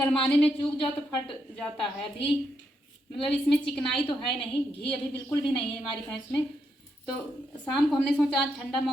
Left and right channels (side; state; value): both; normal; correlation 0.80